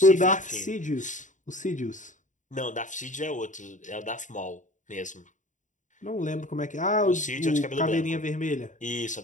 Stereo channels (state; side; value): late; right; 0.36 ms